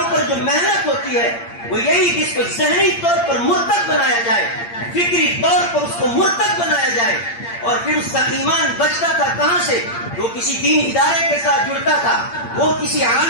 جو محنت ہوتی ہے وہ یہی کہ اس کو ذہنی طور پر مرتد بنایا جائے، فکری طور پر اس کو مرتد بنایا جائے، اور پھر اس کا ایمان بچتا تھا کہاں سے؟ وہ کسی دین ادارے کے ساتھ جڑتا تھا، وہ کسی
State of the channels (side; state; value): right; late; 8.7 ms